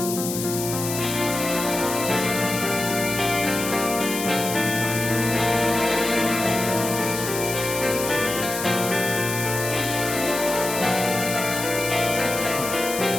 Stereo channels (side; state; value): left; noise; hiss, 5 dB below the sound